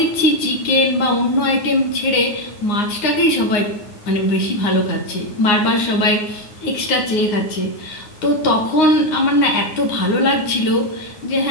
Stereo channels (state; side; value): late; right; 9.6 ms